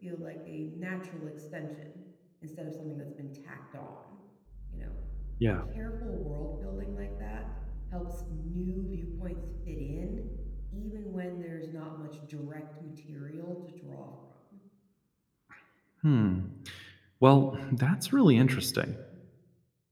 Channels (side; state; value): both; identical; correlation 1.00